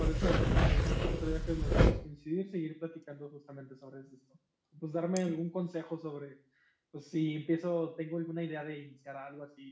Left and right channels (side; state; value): both; identical; correlation 1.00